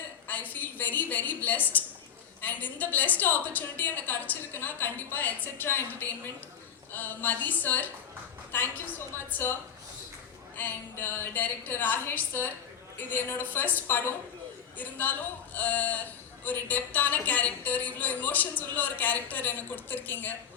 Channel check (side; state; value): right; quieter; 8.0 dB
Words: I feel very very blessed. And இந்த பிளெஸ்ட் ஆப்பர்ச்சுனிட்டி எனக்கு கிடச்சிருக்குன்னா கண்டிப்பாக etcetera entertainment, Mathi sir, thank you so much sir. And director Rakesh sir, இது என்னோட ஃபர்ஸ்ட் படம் இருந்தாலும் ஒரு டெப்த்தான கேரக்டர், இவ்வளோ எமோஷன்ஸ் உள்ள ஒரு கேரக்டர் எனக்கு கொடுத்துருக்கீங்க.